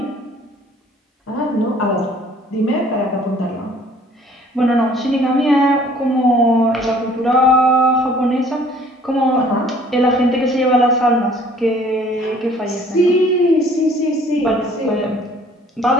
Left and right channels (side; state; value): both; normal; correlation 0.55